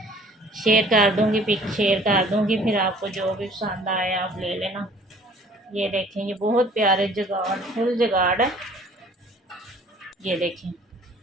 शेयर कर दूंगी, पिक शेयर कर दूंगी, फिर आपको जो भी पसंद आए आप ले लेना। ये देखें ये बहुत प्यारे जगाड़ फुल जगाड़ है। ये देखें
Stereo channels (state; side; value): normal; both; correlation 0.53